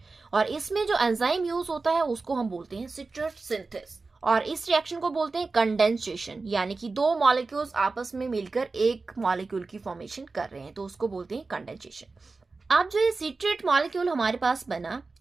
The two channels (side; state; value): left; quieter; 3.9 dB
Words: और इसमें जो एंजाइम यूज होता है उसको हम बोलते हैं सिट्रेट सिंथेस, और इस रिएक्शन को बोलते हैं कंडेंसेशन, यानी कि दो मॉलिक्यूल्स आपस में मिलकर एक मॉलिक्यूल की फॉर्मेशन कर रहे हैं, तो उसको बोलते हैं कंडेंसेशन। अब जो ये सिट्रेट मॉलिक्यूल हमारे पास बना,